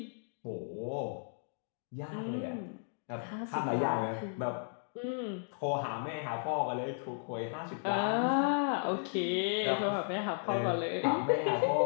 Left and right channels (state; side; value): silent; right; digital silence